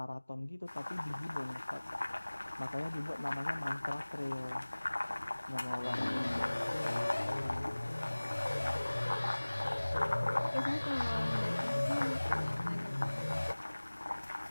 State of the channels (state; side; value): inverted; both; correlation -1.00